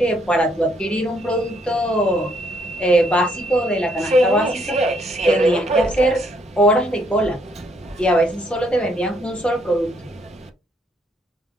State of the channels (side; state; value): both; normal; correlation 0.70